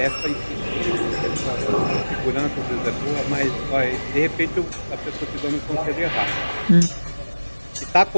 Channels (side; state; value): both; inverted; correlation -1.00